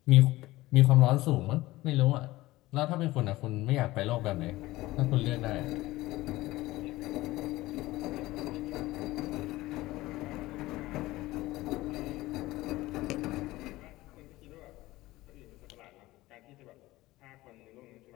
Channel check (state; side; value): quieter; right; 18.3 dB